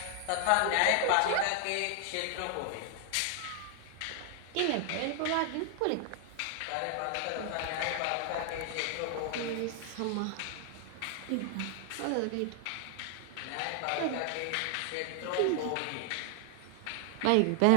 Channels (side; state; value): both; different; correlation 0.00